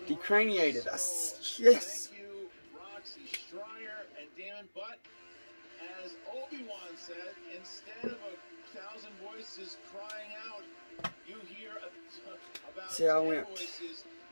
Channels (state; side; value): inverted; both; correlation -1.00